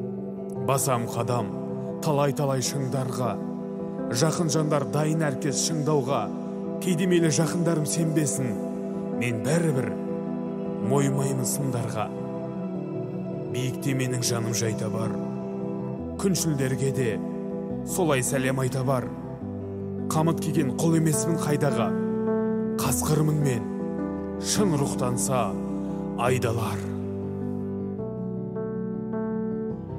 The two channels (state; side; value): identical; both; correlation 1.00